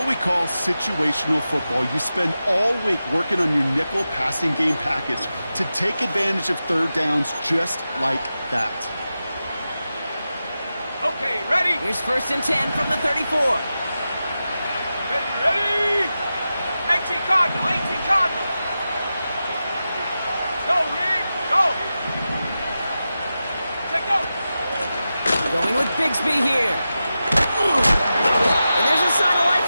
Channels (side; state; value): both; inverted; correlation -0.92